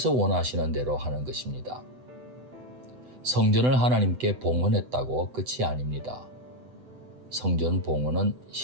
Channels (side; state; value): left; late; 8.0 ms